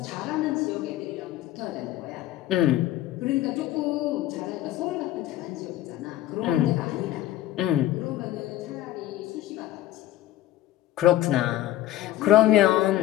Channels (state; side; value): quieter; right; 14.2 dB